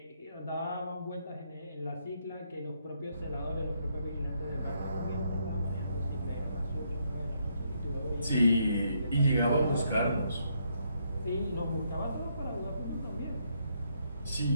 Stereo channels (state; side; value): inverted; both; correlation -0.75